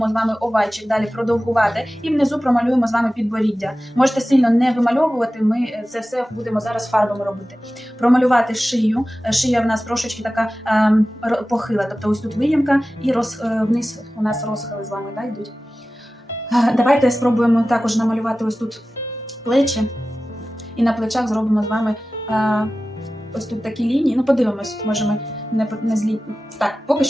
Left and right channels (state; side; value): normal; both; correlation 0.95